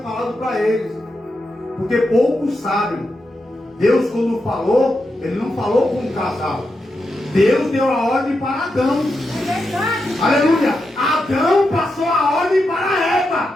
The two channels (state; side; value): normal; both; correlation 0.86